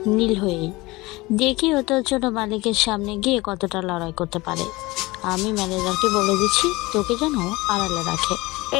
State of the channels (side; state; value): right; quieter; 21.7 dB